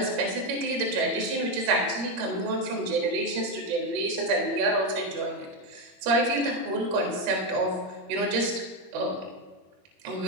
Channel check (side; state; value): left; late; 22 ms